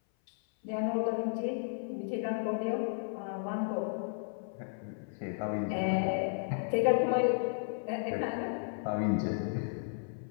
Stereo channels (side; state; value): right; silent; 55 dB below the other